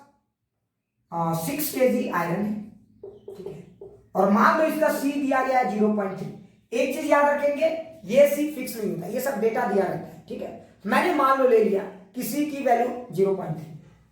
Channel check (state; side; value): identical; both; correlation 1.00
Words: 6 केजी आयरन है, ठीक है, और मान लो इसका सी दिया गया है 0.3। एक चीज याद रखेंगे, ये सी फिक्स नहीं होता, ये सब डेटा दिया रहता है, ठीक है। मैंने मान लो ले लिया कि सी की वैल्यू 0.3,